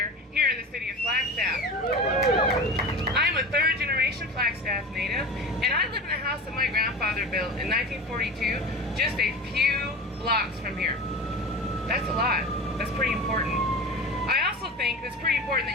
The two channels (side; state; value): both; normal; correlation 0.31